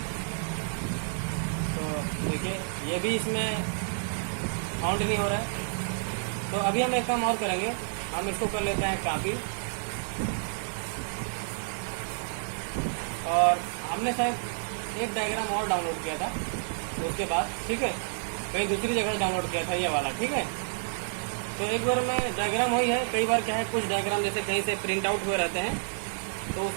तो देखिए ये भी इसमें काउंट नहीं हो रहा है। तो अभी हम एक काम और करेंगे, हम इसको कर लेते हैं कॉपी, और हमने शायद एक डायग्राम और डाउनलोड किया था तो उसके बाद, ठीक है, कहीं दूसरी जगह डाउनलोड किया था ये वाला, ठीक है। तो एक बार में डायग्राम वही है, कई बार क्या है कुछ डायग्राम जैसे कहीं से प्रिंट आउट हुए रहते हैं तो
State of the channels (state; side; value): silent; left; 58 dB below the other